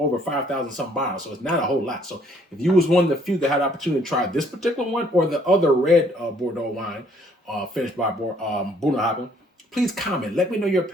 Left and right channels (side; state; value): both; normal; correlation 0.63